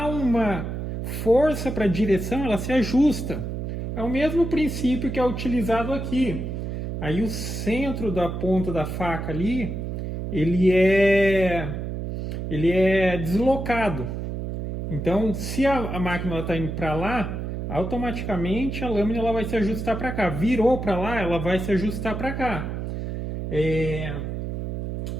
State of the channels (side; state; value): right; noise; hum, 4 dB below the sound